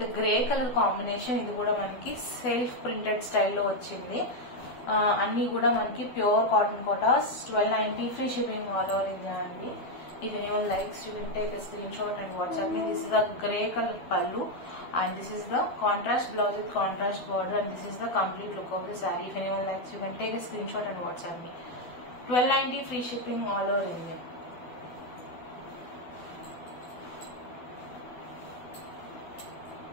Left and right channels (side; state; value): right; late; 12 ms